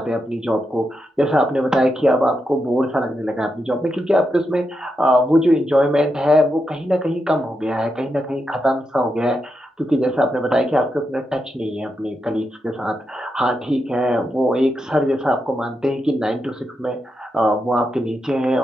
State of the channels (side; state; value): both; normal; correlation 0.85